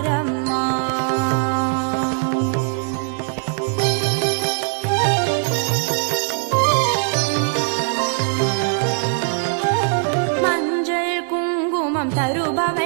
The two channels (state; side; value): silent; left; 55 dB below the other